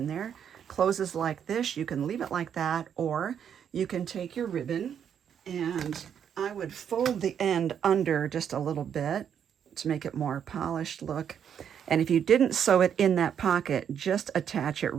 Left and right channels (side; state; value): left; quieter; 8.4 dB